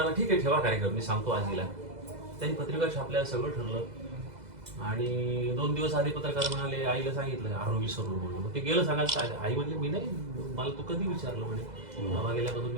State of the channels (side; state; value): left; late; 2.0 ms